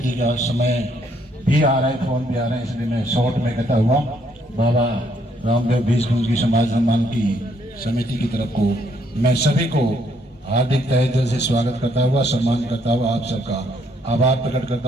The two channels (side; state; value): both; normal; correlation 0.70